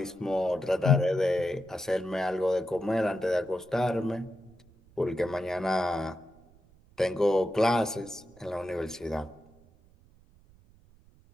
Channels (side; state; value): right; noise; rumble, 28 dB below the sound